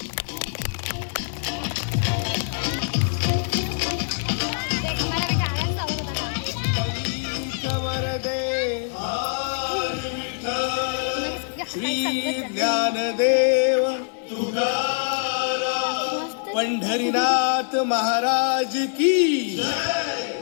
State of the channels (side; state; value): right; silent; digital silence